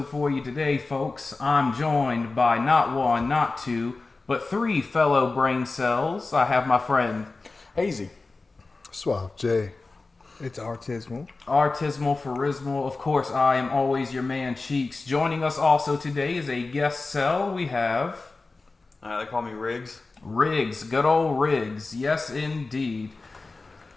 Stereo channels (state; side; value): quieter; right; 3.6 dB